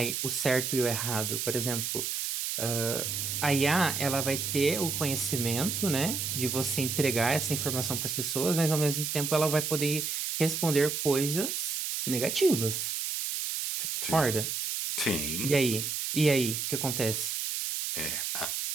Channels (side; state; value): right; noise; hiss, 2 dB below the sound